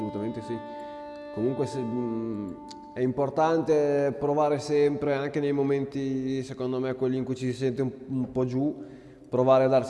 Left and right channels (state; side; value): identical; both; correlation 1.00